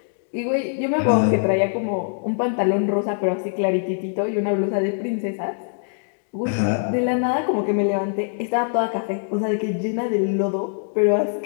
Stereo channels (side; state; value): right; silent; digital silence